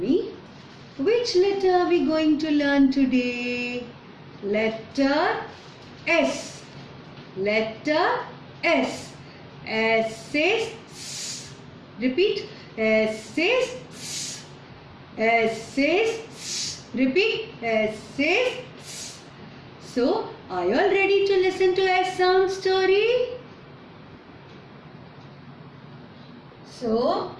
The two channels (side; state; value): both; identical; correlation 1.00